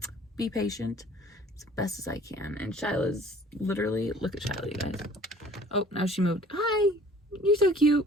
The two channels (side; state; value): both; normal; correlation 0.52